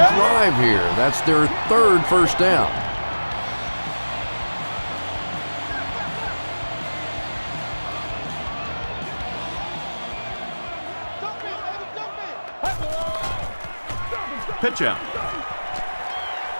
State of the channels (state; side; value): inverted; both; correlation -1.00